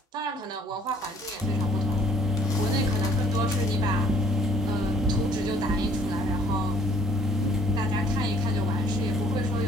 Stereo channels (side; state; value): both; normal; correlation 0.59